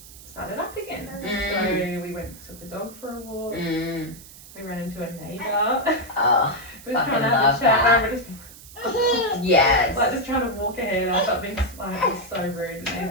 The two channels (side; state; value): right; noise; hiss, 18 dB below the sound